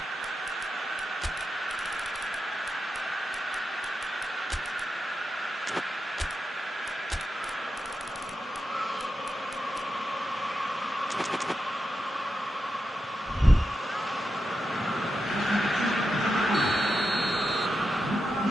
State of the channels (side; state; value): both; normal; correlation 0.88